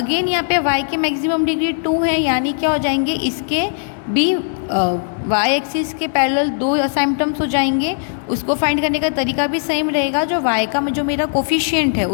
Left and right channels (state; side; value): silent; right; digital silence